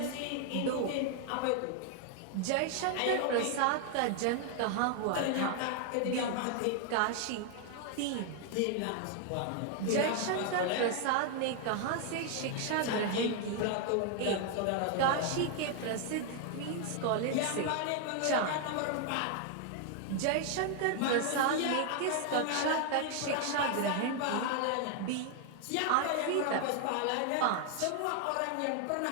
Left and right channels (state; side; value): different; both; correlation 0.00